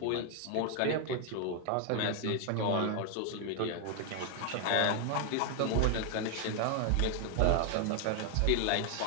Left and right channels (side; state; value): both; different; correlation 0.00